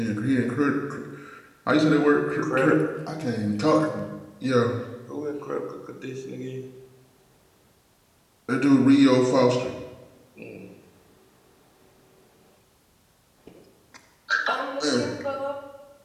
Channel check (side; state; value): both; identical; correlation 1.00